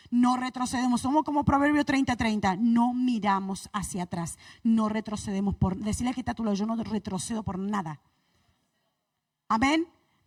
No retrocedemos, somos como Proverbio 30:30. No miramos hacia atrás, no retrocedemos por... Decirle que está a tu lado, yo no retrocedo por nada. Amén.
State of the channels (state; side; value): identical; both; correlation 1.00